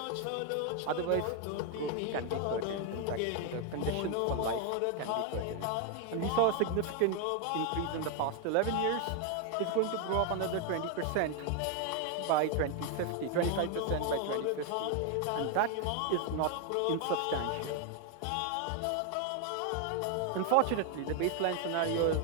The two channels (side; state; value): both; different; correlation 0.00